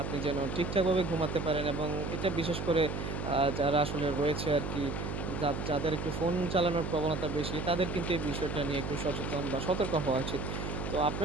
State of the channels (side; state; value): right; noise; hum, 4 dB below the sound